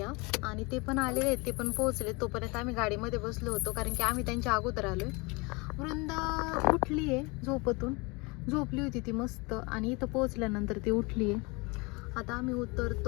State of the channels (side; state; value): right; quieter; 27.3 dB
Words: आणि ते पण आलेले आहेत, ते पण पोहोचले. तोपर्यंत आम्ही गाडीमध्ये बसलो होतो, कारण की आम्ही त्यांच्या अगोदर आलोय. वृंदा उठली आहे झोपेतून, झोपली होती ती मस्त, आणि इथं पोहोचल्यानंतर ती उठली आहे. आता आम्ही